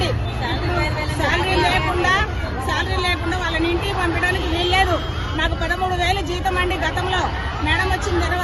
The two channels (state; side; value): identical; both; correlation 1.00